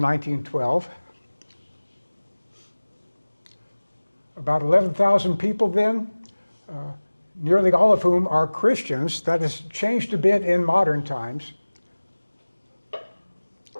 About 11,000 people then, nearly all of whom are Christians. That has changed a bit in modern times.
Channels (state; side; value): inverted; both; correlation -1.00